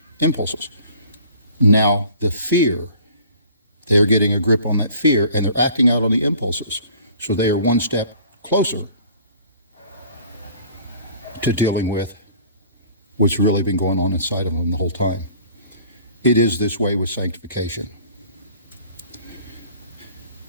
impulses. Now the fear, they're getting a grip on that fear and they're acting out on the impulses. So they are one step closer to dealing with what's really been going on inside of them the whole time. It is this way with sanctification.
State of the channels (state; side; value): inverted; both; correlation -0.50